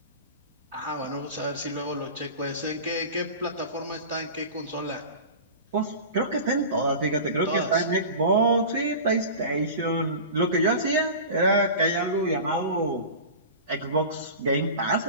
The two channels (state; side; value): inverted; both; correlation -0.33